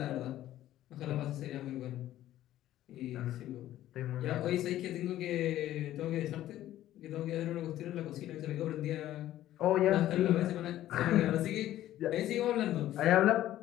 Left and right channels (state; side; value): quieter; right; 13.5 dB